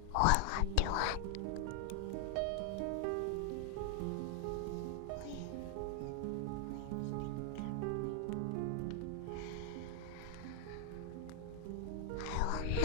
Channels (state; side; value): different; both; correlation 0.00